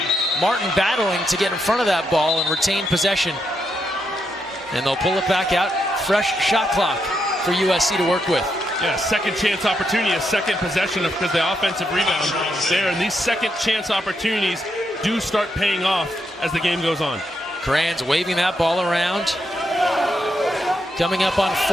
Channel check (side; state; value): both; normal; correlation 0.81